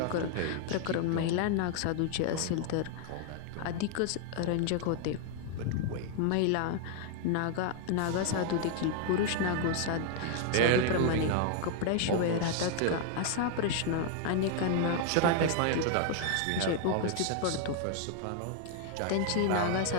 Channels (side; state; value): both; different; correlation 0.00